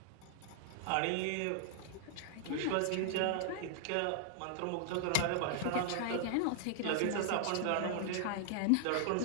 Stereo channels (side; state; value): both; different; correlation -0.01